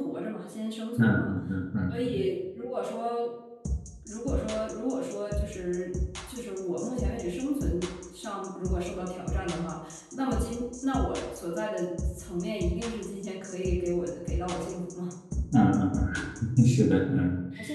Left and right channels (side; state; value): both; identical; correlation 1.00